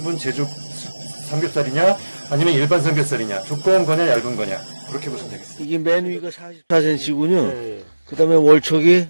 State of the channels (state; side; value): inverted; both; correlation -1.00